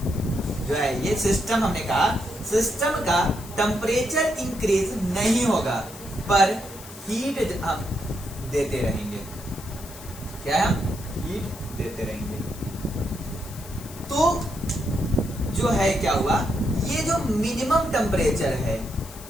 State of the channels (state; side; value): noise; left; hiss, 16 dB below the sound